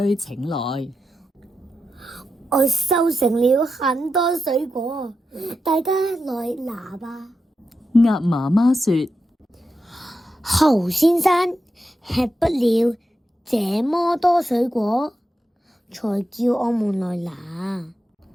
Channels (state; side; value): normal; both; correlation 0.88